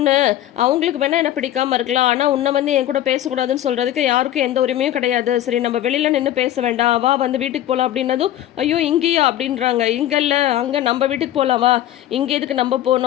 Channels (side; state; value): right; quieter; 12.6 dB